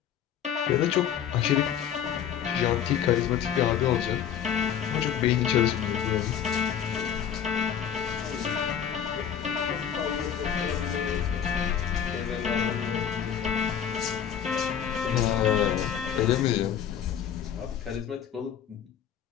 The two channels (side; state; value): right; quieter; 8.9 dB